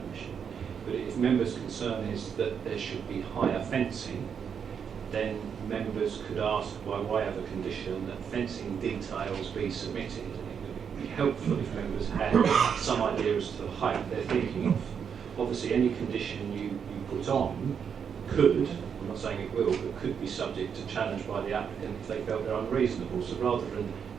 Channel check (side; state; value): left; quieter; 7.2 dB